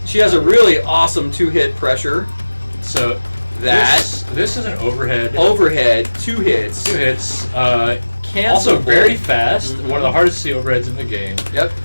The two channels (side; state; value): both; inverted; correlation -1.00